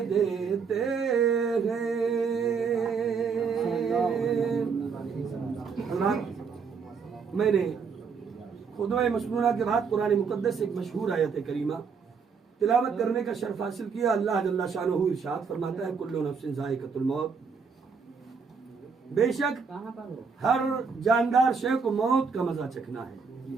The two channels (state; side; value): quieter; left; 5.6 dB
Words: دیتے ہیں۔ میں نے خطبہ مسنونہ کے بعد قرآن مقدس سے ایک مشہور آیت کریمہ تلاوت کرنے کا شرف حاصل کیا۔ اللہ جل شانہ ارشاد فرماتا ہے کل نفس ذائقۃ الموت، بے شک ہر جاندار شے کو موت کا مزہ چکھنا ہے۔